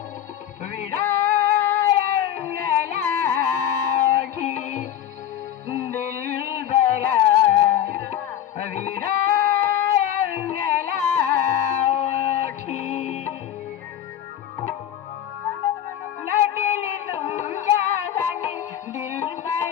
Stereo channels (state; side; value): quieter; right; 10.7 dB